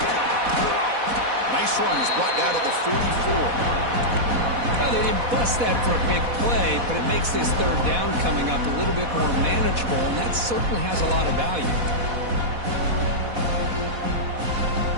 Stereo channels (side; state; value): left; late; 4.1 ms